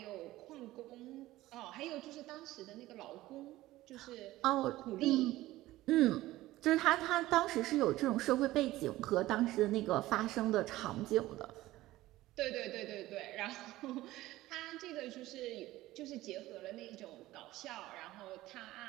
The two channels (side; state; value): left; quieter; 16.8 dB